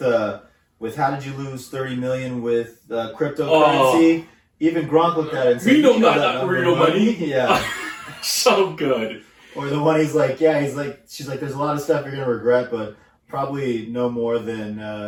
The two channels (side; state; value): both; identical; correlation 1.00